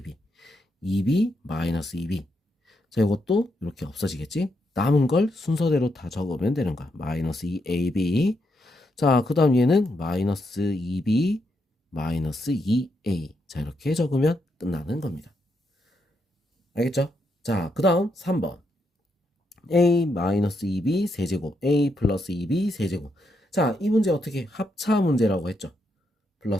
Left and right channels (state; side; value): normal; both; correlation 0.80